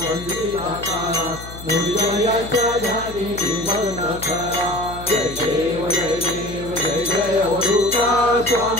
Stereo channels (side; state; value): left; noise; hum, 14 dB below the sound